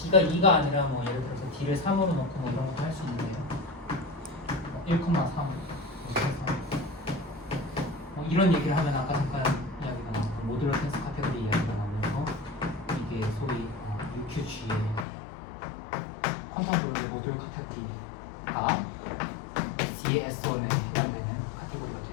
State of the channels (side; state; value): right; drops out; at 15.1 s